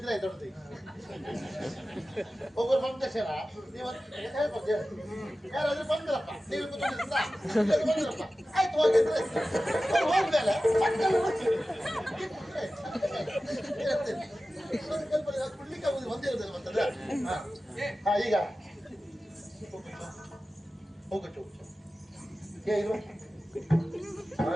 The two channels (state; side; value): normal; both; correlation 0.95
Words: ಆಯ್ತು ದೊಡ್ಡದು ಒಬ್ಬರು ಬಂದಕ್ಷರ ನೀವು ಯಾರಾದ್ರೂ ಬಂದ್ರಪ್ಪ ನೀವು ಬಂದ್ರಪ್ಪ ಆಯ್ತು ಹೋಗಿದ್ರೆ ಹೋದ್ಮೇಲೆ ಕುಡ್ಲಿಕ್ಕೆ ಆಗುದು ಒಂದೇ ಇರೋದಿಲ್ಲ ಮತ್ತಂದ್ರೆ ಹಾ ಈಗ ಹೋಗಟ್ಟು ಏನು